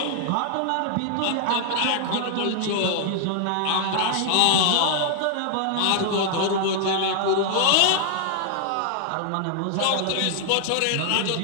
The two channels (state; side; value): different; both; correlation 0.00